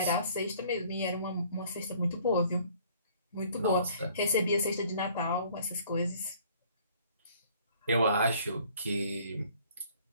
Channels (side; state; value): both; inverted; correlation -0.57